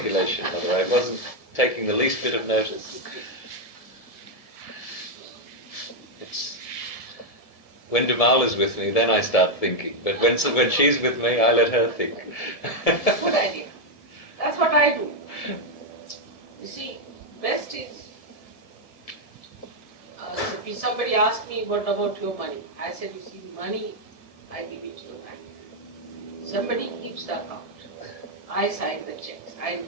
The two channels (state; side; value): late; right; 1.7 ms